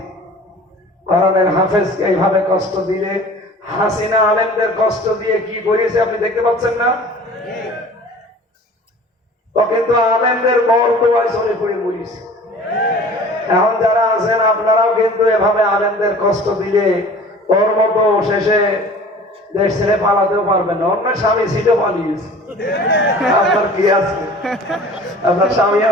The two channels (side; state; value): both; normal; correlation 0.45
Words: কোরআনের হাফেজকে এইভাবে কষ্ট দিলে, হাসিনা আলেমদের কষ্ট দিয়ে কি করেছে আপনি দেখতে পাচ্ছেন না? তো কিন্তু আলেমদের বরদোয়ায় চলে পড়ে মরিছে। এখন যারা আছেন আপনারাও কিন্তু এভাবে আলেমদের কষ্ট দিলে ওর মতো শেষে দেশ ছেড়ে পালাতেও পারবেন না। অন্য স্বামী ছিল, পালিয়েছে। আপনার কি আছে? আপনার স্বামী